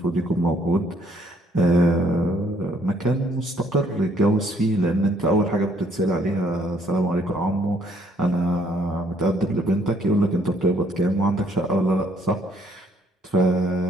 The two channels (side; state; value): both; normal; correlation 0.65